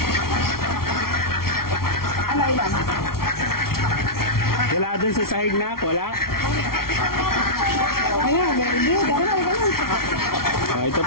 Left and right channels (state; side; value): late; right; 0.93 ms